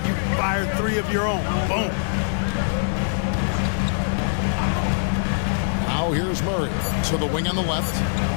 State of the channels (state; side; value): silent; right; 63 dB below the other